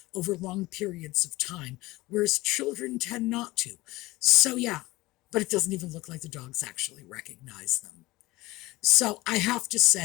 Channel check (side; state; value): right; quieter; 19.9 dB